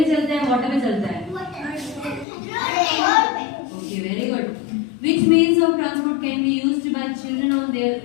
चलता है, वाटर पे चलता है? Okay, very good. Which means of transport can be used by children on their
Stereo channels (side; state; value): right; drops out; at 2.2 s